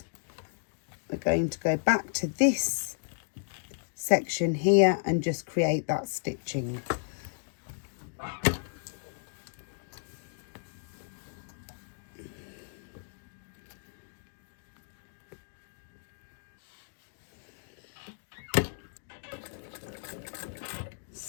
we're going to go back to this section here and just create that stitching.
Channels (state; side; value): silent; right; digital silence